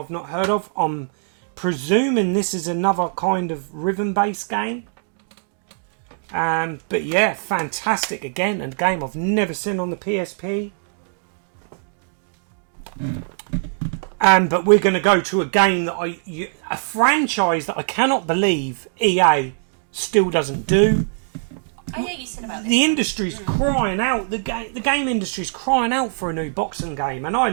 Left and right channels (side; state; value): left; silent; digital silence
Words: not heard of. I'm presuming this is another kind of rhythm-based game. But yeah, fantastic again, and a game I've never seen on the PSP. But we're going to go to a game that a franchise that I cannot believe EA still doesn't do. Oh yeah, you said about this. The industry's crying out. The game industry's crying out for a new boxing game, and I